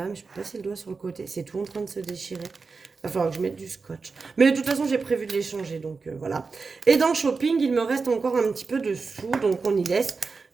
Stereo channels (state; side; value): quieter; left; 4.5 dB